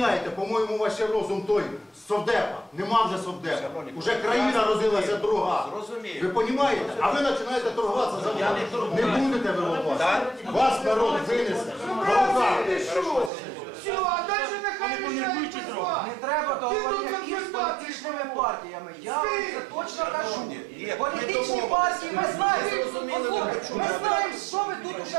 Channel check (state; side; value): drops out; left; at 13.3 s